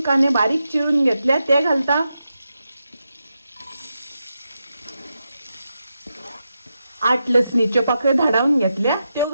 कांदे बारीक चिरून घेतल्या, ते घालता। 8 लसणीच्यो पाकळ्यो धाडावन घेतल्या, त्यो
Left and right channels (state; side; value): inverted; both; correlation -0.87